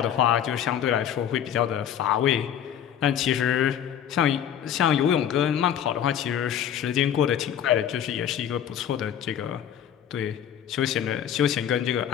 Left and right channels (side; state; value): right; quieter; 9.7 dB